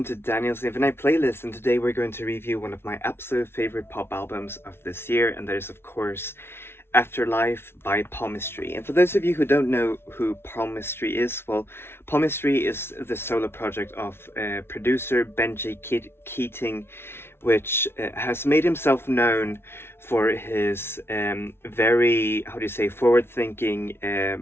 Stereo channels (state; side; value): late; right; 0.12 ms